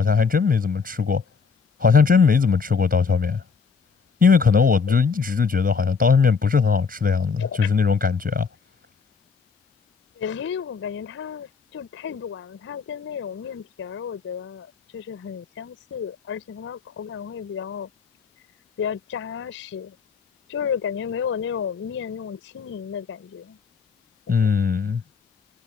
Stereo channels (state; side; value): quieter; right; 5.4 dB